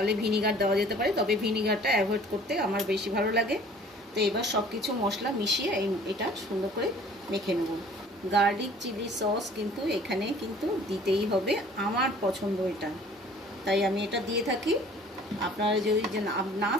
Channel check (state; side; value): normal; both; correlation 0.51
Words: ভিনিগার দেওয়া যেতে পারে, তবে ভিনিগারটা অ্যাভয়েড করতে আমার বেশি ভালো লাগে। তো এবার সব কিছু মশলা মিশিয়ে এটা সুন্দর করে মেখে নেব। গার্লিক চিলি সস কিন্তু এখানে কিন্তু দিতেই হবে, আমার পছন্দ এটা, তাই আমি এটা দিয়ে থাকি। আপনারা যদি না